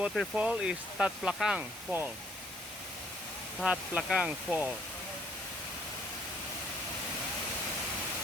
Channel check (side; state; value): both; normal; correlation 0.64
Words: is Tat Plakang Fall. Tat Plakang Fall.